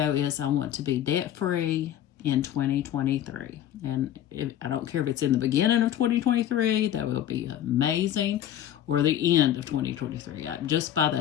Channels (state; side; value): quieter; right; 11.3 dB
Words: is I want to be debt-free in 2023. And I don't care if it's in the beginning of 2023, that will be amazing, or the end of 2023. Just by